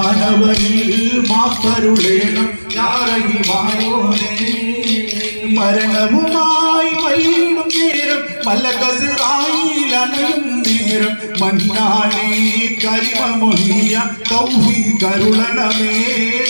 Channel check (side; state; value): both; inverted; correlation -1.00